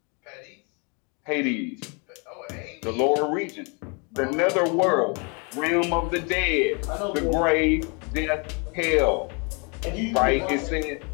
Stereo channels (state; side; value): quieter; right; 33.6 dB